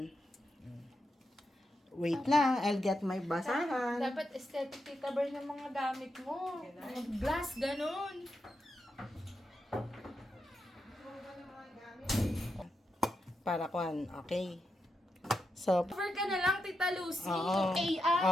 Wait lang, I'll get my basahan. Dapat aesthetic tita bar ng mga gamit mo. Mga glass, ganun. Para kuhan, okay. So, Cover ka na lang, Tita Lucy. oo. Yung AI.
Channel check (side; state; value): both; normal; correlation 0.86